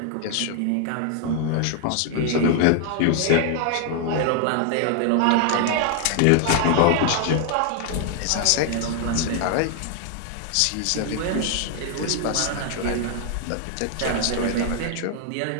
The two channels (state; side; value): different; both; correlation 0.00